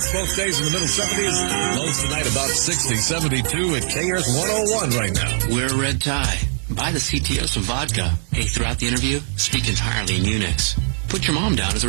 both days in the middle 70s. Lows tonight about 60, 72 at KRTH 101 right now. Wear a red tie. Buy the CTO some vodka. Hey, throughout the interview, speak entirely in Unix. Put your mom down as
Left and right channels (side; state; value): left; silent; digital silence